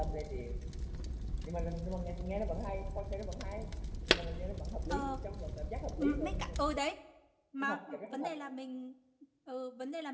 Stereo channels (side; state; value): both; identical; correlation 1.00